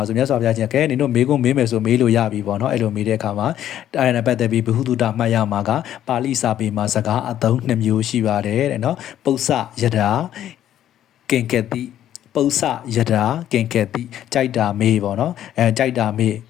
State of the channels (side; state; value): right; quieter; 11.4 dB